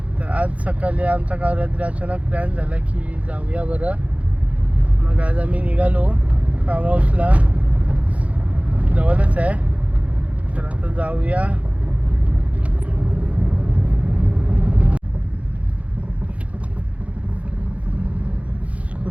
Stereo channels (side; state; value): left; late; 0.066 ms